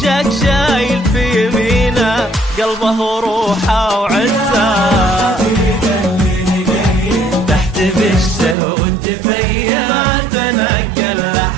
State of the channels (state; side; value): drops out; left; at 8.6 s